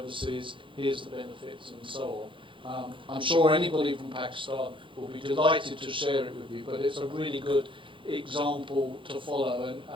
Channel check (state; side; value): late; left; 0.25 ms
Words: here's the benefits, and so on. I'm sure anybody from Pakistan will be delighted to share it with you, but it's a really good example to follow, and